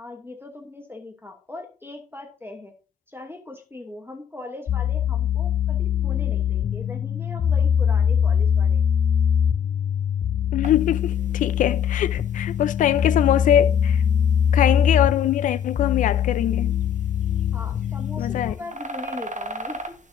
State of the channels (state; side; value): quieter; right; 8.5 dB